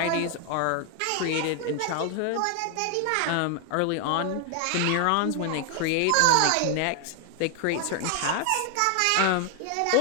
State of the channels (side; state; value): both; different; correlation 0.00